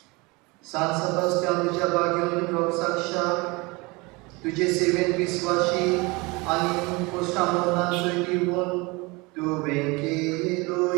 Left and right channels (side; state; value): left; quieter; 25.4 dB